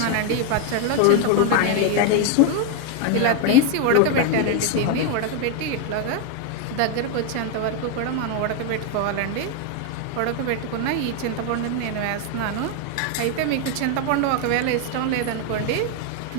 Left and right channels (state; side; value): different; both; correlation 0.01